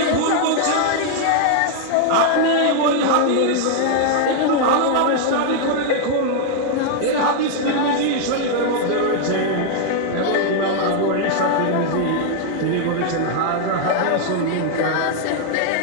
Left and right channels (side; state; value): both; different; correlation 0.00